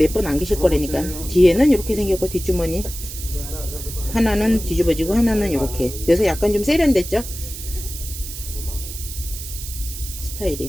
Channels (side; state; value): right; noise; hiss, 10 dB below the sound